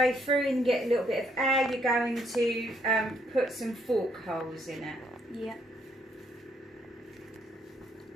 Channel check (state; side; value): normal; both; correlation 0.71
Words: through and get a little bit of air, you're going to put some fork holes in it. Yeah.